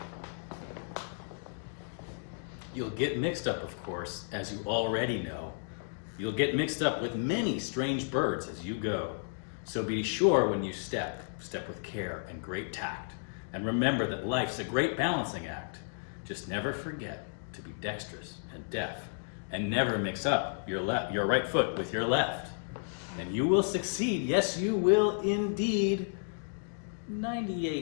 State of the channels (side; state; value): right; silent; digital silence